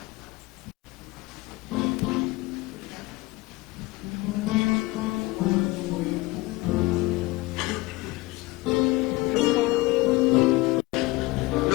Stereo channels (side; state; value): right; quieter; 21.3 dB